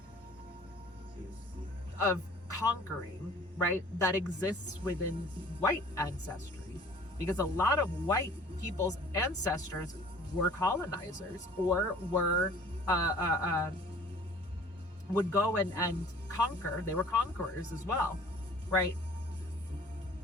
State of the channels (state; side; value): normal; both; correlation 0.49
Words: conquering, right? That exists within white ancestry, because a lot of white people's ancestors were colonizers or were would go and conquer. They were conquerors as well, right?